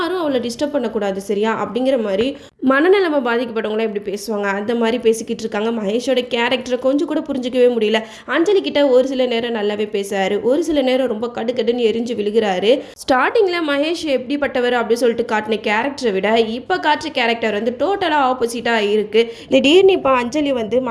அவளை டிஸ்டர்ப் பண்ணக்கூடாது சரியா அப்படிங்கிற மாதிரி மனநலமை பாதிக்கப்பட்டவங்களாம் எப்படி பேசுவாங்க அந்த மாதிரி பேசிக்கிட்டு இருக்காங்க. மகேஷோட கேரக்டரை கொஞ்சம் கூட புரிஞ்சிக்கவே முடியல. அஞ்சலி கிட்ட ஒரு சில நேரம் நல்லாவே பேசுறாரு, ஒரு சில நேரம் ரொம்ப கடுக்கடுன்னு எரிஞ்சு விழுகிறாரு. ஸ்டார்டிங்கில் மகேஷ் எப்படிப்பட்டவர் அப்படின்னு சொல்லிட்டு காட்டின கேரக்டரை விட இப்போ காட்டுற கேரக்டர் வந்து டோட்டலாக ஆப்போசிட்டாக இருக்குது. திடீர்னு இப்போ அஞ்சலி வந்து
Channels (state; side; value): identical; both; correlation 1.00